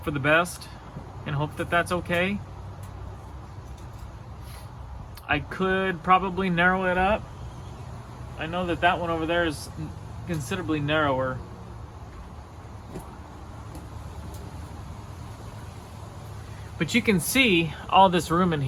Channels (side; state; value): both; identical; correlation 1.00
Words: for the best and hope that that's okay. I could probably narrow it up. I know that that one over there is considerably narrower. But you can see all this room in